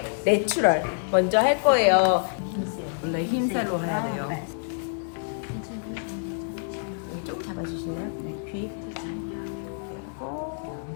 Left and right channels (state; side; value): silent; right; 59 dB below the other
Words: 내추럴 먼저 할 거예요. 원래 흰살로 해야 돼요. 여기 조금 잡아주실래요? 네. 귀.